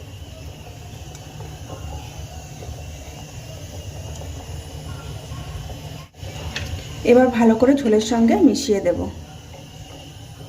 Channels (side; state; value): both; identical; correlation 1.00